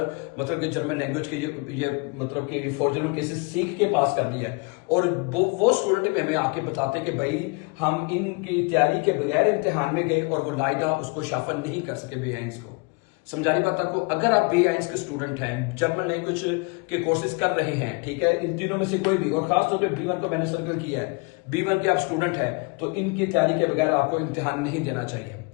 मतलब कि जर्मन लैंग्वेज के ये मतलब कि फॉर जर्मन केसेस सीख के पास कर लिया है। और वो स्टूडेंट हमें आके बताते हैं कि भाई हम इनकी तैयारी के बगैर इम्तिहान में गए और वो लाइदा उसको शाफल नहीं कर सके B1 को। समझानी बात आपको, अगर आप B1 के स्टूडेंट हैं, जर्मन लैंग्वेज के कोर्सेज कर रहे हैं, ठीक है, इन तीनों में से कोई भी, और खासतौर पे B1 को मैंने सर्कल किया है, B1 के आप स्टूडेंट हैं तो इनकी तैयारी के बगैर आपको इम्तिहान नहीं देना चाहिए।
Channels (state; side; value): quieter; right; 30.6 dB